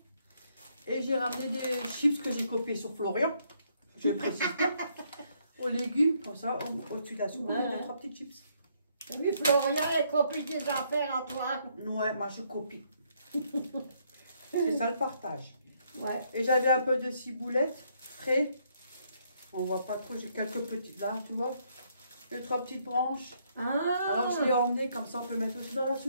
Et j'ai ramené des chips que j'ai copiés sur Florian. Je précise pas. Aux légumes, comme ça, au-dessus de la soupe, on a 3 petites chips. Oui, Florian, elle copie des affaires à toi. Ouais, moi je copie. C'est ça le partage. Ouais. Et j'avais un peu de ciboulette frais. On voit pas trop, j'ai quelques petites là, tu vois. 2-3 petites branches. Alors je l'ai emmené, comme ça on peut mettre aussi dans la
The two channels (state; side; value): inverted; both; correlation -0.71